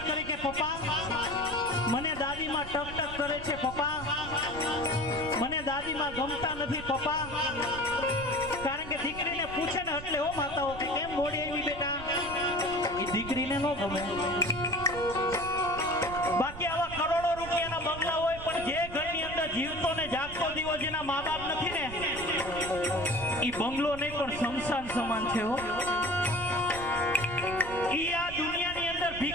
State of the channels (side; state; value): right; noise; rumble, 12 dB below the sound